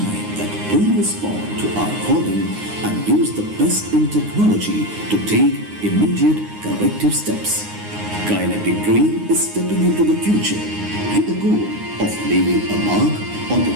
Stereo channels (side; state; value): left; late; 9.6 ms